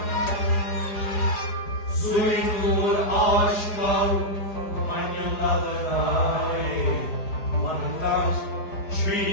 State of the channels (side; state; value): right; late; 4.8 ms